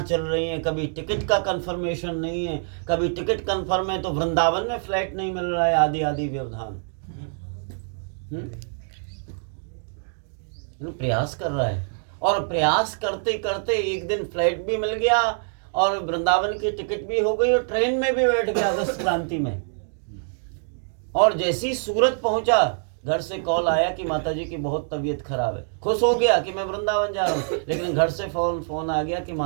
चल रही हैं, कभी टिकट का कंफर्मेशन नहीं है, कभी टिकट कंफर्म है तो वृंदावन में फ्लाइट नहीं मिल रहा है, आदि आदि व्यवधान। प्रयास कर रहा है और प्रयास करते करते एक दिन फ्लाइट भी मिल गया और वृंदावन की टिकट भी हो गई और ट्रेन में भी बैठ गया अगस्त क्रांति में। और जैसे ही सूरत पहुंचा, घर से कॉल आया कि माताजी की बहुत तबीयत खराब है। खुश हो गया कि मैं वृंदावन जा रहा हूँ, लेकिन घर से फोन आ गया कि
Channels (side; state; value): left; silent; digital silence